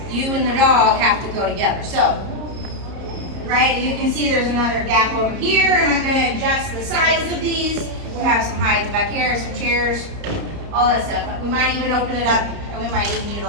you and the dog have to go together. So, right, you can see there's another gap over here, and I'm gonna adjust the size of these. We have some hides back here, some chairs, all that stuff. We might even open it up, and we might even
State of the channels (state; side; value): late; left; 30 ms